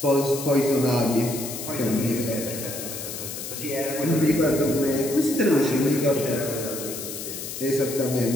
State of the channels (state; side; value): noise; left; hiss, 8 dB below the sound